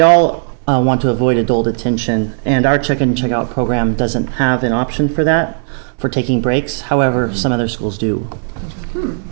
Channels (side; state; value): left; silent; digital silence